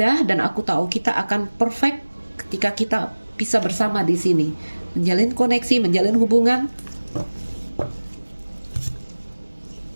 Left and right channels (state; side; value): inverted; both; correlation -1.00